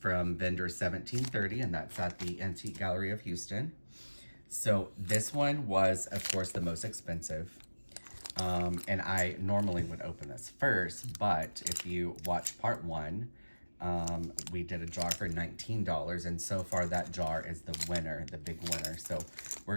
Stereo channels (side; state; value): both; inverted; correlation -1.00